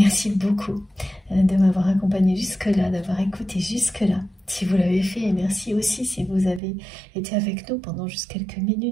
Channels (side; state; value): left; drops out; at 6.6 s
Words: beaucoup de m'avoir accompagné jusque-là, d'avoir écouté jusque-là. Si vous l'avez fait, et merci aussi si vous avez été avec nous pendant juste quelques